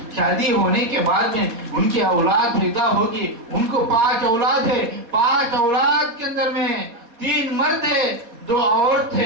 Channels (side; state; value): left; late; 4.2 ms